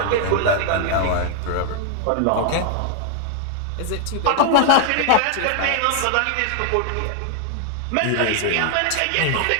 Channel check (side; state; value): both; different; correlation 0.00